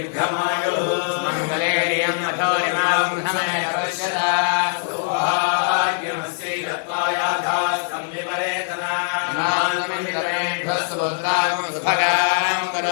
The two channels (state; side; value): silent; right; digital silence